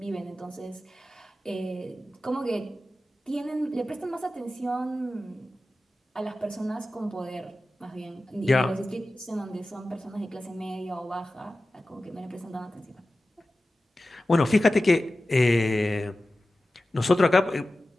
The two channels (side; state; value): both; normal; correlation 0.95